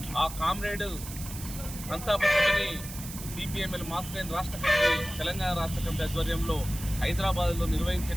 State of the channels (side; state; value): right; noise; hiss, 11 dB below the sound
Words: ఆ కామ్రేడ్ సంతాప సభని సిపిఎంఎల్ మాస్ లైన్ రాష్ట్ర కమిటీ, తెలంగాణ రాష్ట్ర కమిటీ ఆధ్వర్యంలో హైదరాబాద్లో